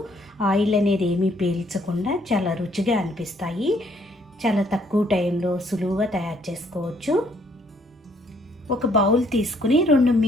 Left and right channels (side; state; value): both; normal; correlation 0.66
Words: ఆయిల్ అనేది ఏమీ పీల్చకుండా చాలా రుచిగా అనిపిస్తాయి. చాలా తక్కువ టైంలో సులువుగా తయారు చేసుకోవచ్చు. ఒక బౌల్ తీసుకుని